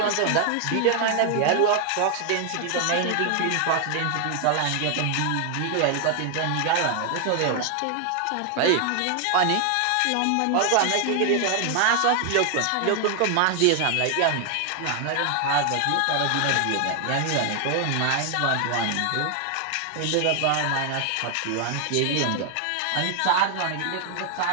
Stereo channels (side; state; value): both; different; correlation 0.00